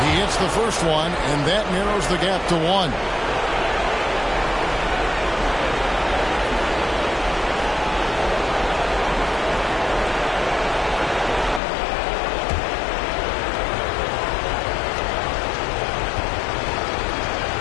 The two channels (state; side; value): drops out; right; at 11.6 s